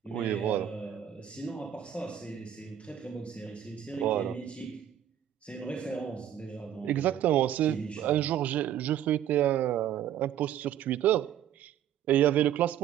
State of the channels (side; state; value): left; quieter; 10.6 dB